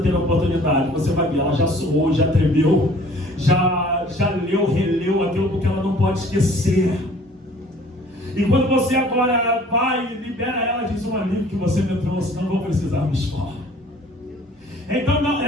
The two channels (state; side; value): normal; both; correlation 0.52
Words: ter oportunidade, você vai ver, ela já suou, já tremeu, já leu, releu aquilo, porque ela não pode esquecer. E quando você agora vai e libera ela, diz: um alívio que você me trouxe, não vou precisar me expor. Então